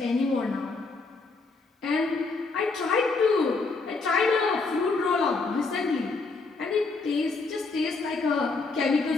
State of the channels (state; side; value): quieter; right; 4.0 dB